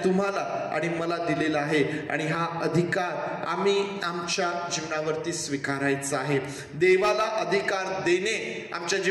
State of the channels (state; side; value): identical; both; correlation 1.00